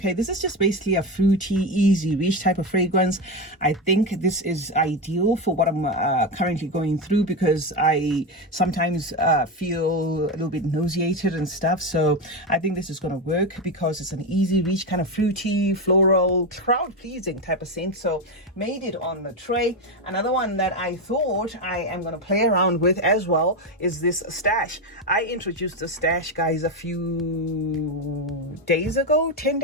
this is just basically a fruity, easy reach type of fragrance. I think this is ideal for what I'm currently going through, because I sometimes feel a little bit nauseated and stuff. So I think this is going to work because it's an easy reach, kind of fruity, floral, crowd pleasing type of scent. So made it on the tray. Another one that I thought I am going to play around with as well is this Stash. I introduced the Stash, guys, a few days ago, 10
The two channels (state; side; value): normal; both; correlation 0.13